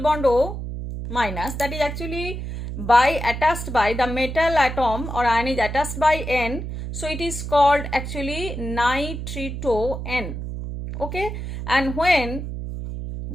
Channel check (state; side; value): noise; right; hum, 6 dB below the sound